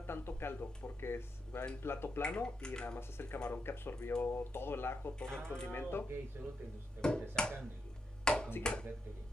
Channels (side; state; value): both; normal; correlation 0.82